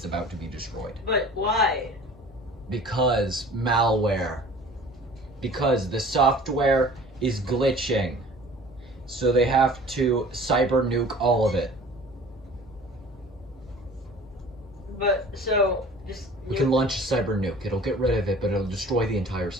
about to be destroyed. But why? Because malware. Because the software is glitching. So they have to cyber nuke all of it. But, so, just... We can launch a cyber nuke. It'll get rid of it, but it'll destroy the entire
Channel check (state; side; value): normal; both; correlation 0.46